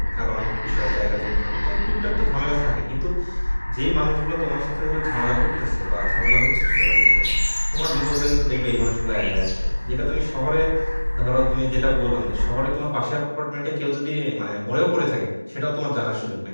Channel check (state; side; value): inverted; both; correlation -1.00